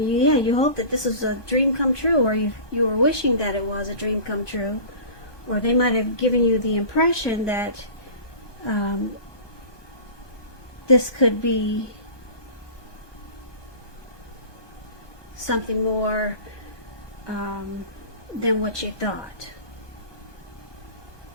hope that this is a dream come true, or you were wishing that it was a dream come true, or they might have given you the impression that this could be something more than what you thought.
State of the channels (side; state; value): right; late; 1.2 ms